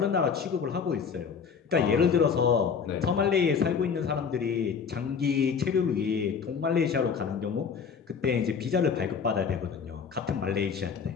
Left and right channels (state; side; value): quieter; right; 6.3 dB